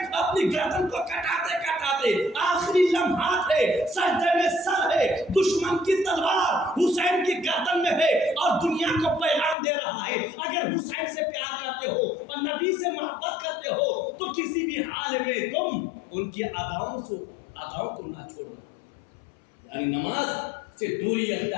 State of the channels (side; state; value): right; drops out; at 9.6 s